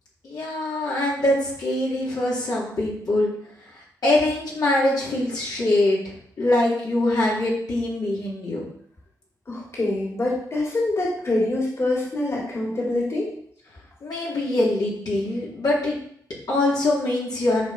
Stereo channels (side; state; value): both; normal; correlation 0.79